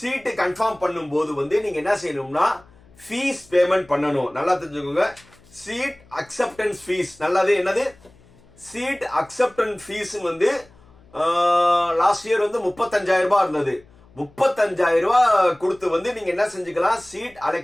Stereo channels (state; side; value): noise; left; hum, 28 dB below the sound